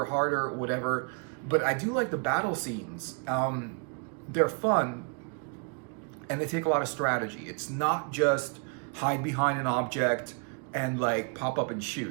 harder, whatever. But I do like the battle scenes. They're fun and they take a lot of strategy. It's not just hide behind an object and like pop up and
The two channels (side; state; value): left; quieter; 38.7 dB